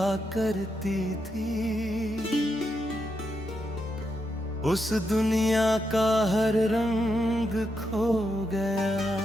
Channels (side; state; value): both; normal; correlation 0.83